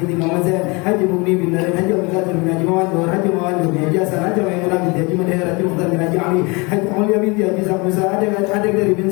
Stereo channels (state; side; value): quieter; right; 27.8 dB